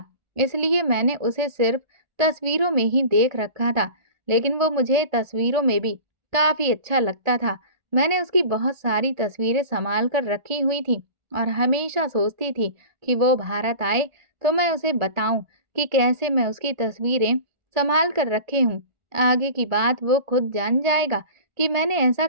इसलिए मैंने उसे सिर्फ तस्वीरों में ही देख रखा था, लेकिन वो मुझे तस्वीरों में भी काफ़ी अच्छा लगता था। मैंने उसकी बहुत सारी तस्वीरें सँभाल कर रखी हुई थी और हमेशा सोचती थी कि वो भारत आए तो मैं उसे बताऊँ कि कैसे मैं उसकी तस्वीरें सँभाल कर रखे हूँ। आगे की बात वो खुद जान जाएगा कि मैंने ऐसा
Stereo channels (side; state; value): left; late; 1.4 ms